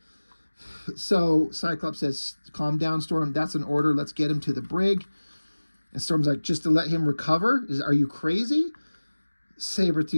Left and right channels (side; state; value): both; inverted; correlation -1.00